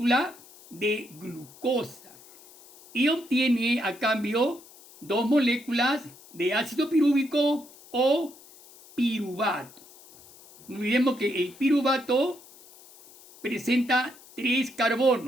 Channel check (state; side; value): noise; left; hiss, 22 dB below the sound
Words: de glucosa y obtiene a cambio 2 moléculas de ácido pirúvico o piruvato. No olvidemos que el piruvato presenta 3